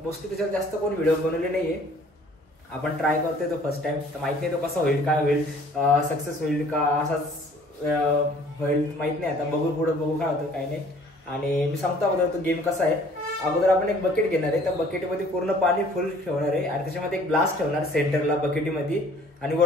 मोस्टली त्याच्यावर जास्त कोण व्हिडिओ बनवले नाही आहे. आपण ट्राय करतोय तो फर्स्ट टाइम. तर माहित नाही तो कसा होईल, काय होईल, सक्सेस होईल का असाच होईल माहित नाही. आता बघू पुढं बघू काय होतं काय नाही. आणि मी सांगतो अगोदर तो गेम कसा आहे. अगोदर आपण एक बकेट घेणार आहे. त्या बकेटमध्ये पूर्ण पाणी फुल ठेवणार आहे आणि त्याच्यामध्ये एक ग्लास ठेवणार सेंटरला बकेटीमध्ये. आणि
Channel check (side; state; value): both; normal; correlation 0.55